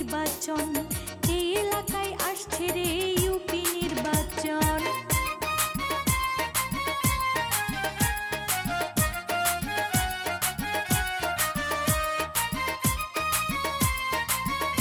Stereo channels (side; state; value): both; identical; correlation 1.00